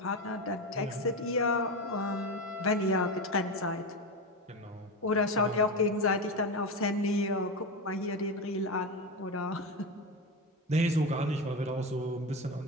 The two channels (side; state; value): both; normal; correlation 0.18